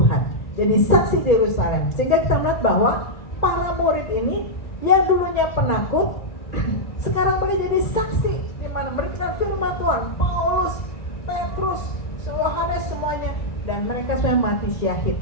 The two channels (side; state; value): right; late; 1.9 ms